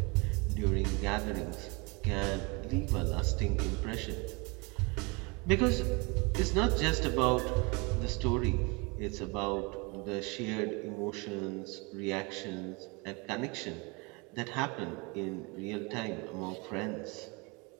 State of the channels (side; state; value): left; quieter; 28.7 dB